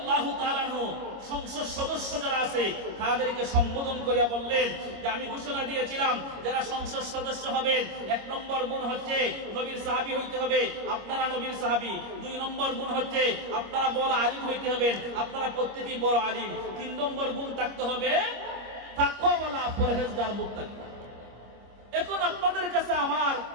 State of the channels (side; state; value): left; late; 25 ms